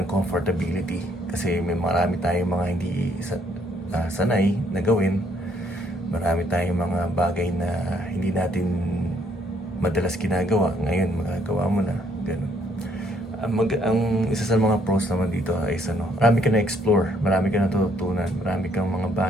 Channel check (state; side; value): normal; both; correlation 0.68